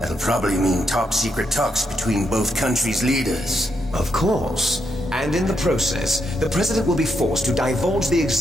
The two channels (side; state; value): both; normal; correlation 0.80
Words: probably mean top-secret talks between both countries' leaders. Of course. And in the process, the president will be forced to divulge the